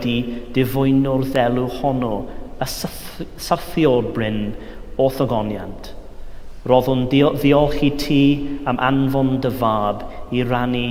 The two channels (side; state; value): both; identical; correlation 1.00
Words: difwyno'r ddelw honno, y syrthiol bryn o thogoniant. Roddwn ddiolch i ti am anfon dy fab i rannu